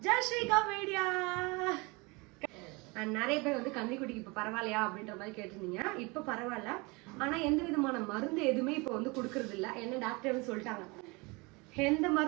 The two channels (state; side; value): quieter; left; 26.6 dB